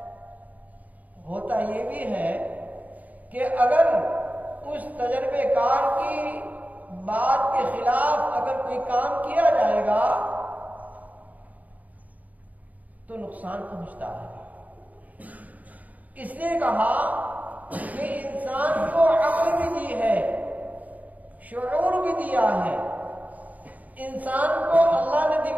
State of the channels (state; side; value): late; left; 0.075 ms